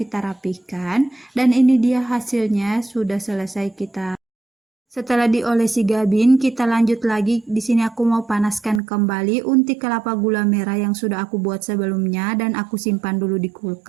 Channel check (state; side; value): drops out; left; at 8.8 s